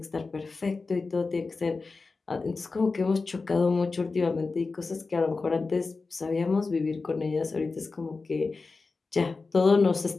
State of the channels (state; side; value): quieter; right; 4.0 dB